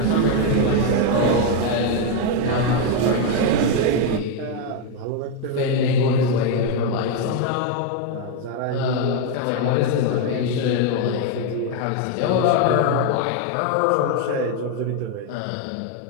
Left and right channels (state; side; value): different; both; correlation 0.01